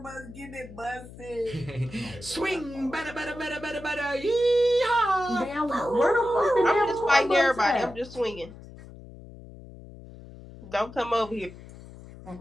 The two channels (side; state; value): left; noise; hum, 17 dB below the sound